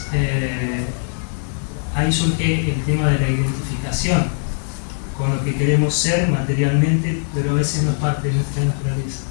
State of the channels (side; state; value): right; silent; 65 dB below the other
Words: ahí surge el tema de la identificación con lo que queremos ser materialmente, pero a veces no es parte de nuestra naturaleza.